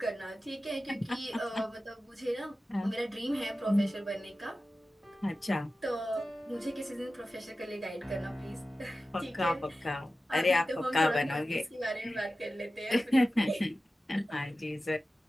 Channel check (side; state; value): both; normal; correlation 0.94